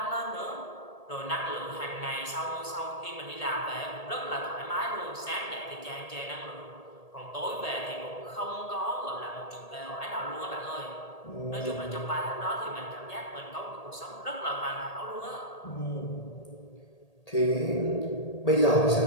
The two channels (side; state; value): right; late; 1.8 ms